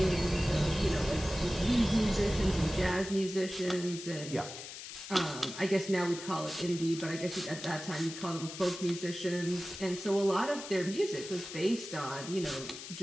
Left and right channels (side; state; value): left; noise; hiss, 11 dB below the sound